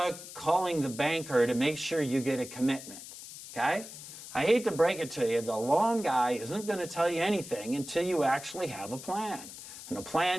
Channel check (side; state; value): left; noise; hiss, 13 dB below the sound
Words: calling the banker to make sure you get a commitment, okay? I hate to break it to you, the loan guy isn't going to tell you anything until you actually have a plan. And a